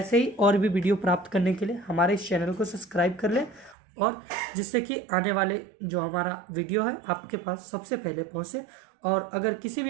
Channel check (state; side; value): drops out; left; at 3.8 s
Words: ही और भी वीडियो प्राप्त करने के लिए हमारे इस चैनल को सब्सक्राइब कर लें और जिससे कि आने वाले जो हमारा वीडियो है आपके पास सबसे पहले पहुंचे। और अगर किसी